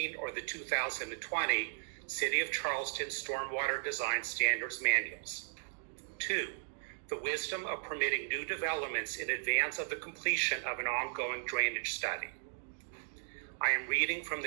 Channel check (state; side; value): silent; left; digital silence